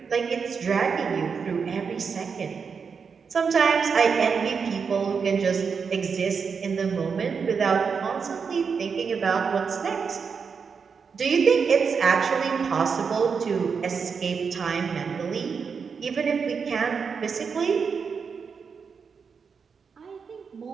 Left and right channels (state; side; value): quieter; left; 5.8 dB